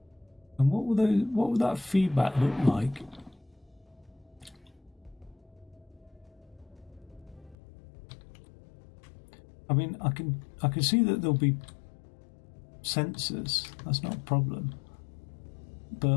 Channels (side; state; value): right; drops out; at 7.6 s